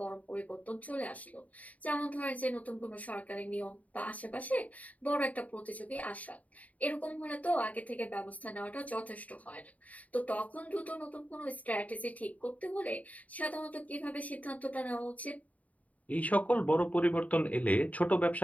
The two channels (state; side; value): late; right; 0.070 ms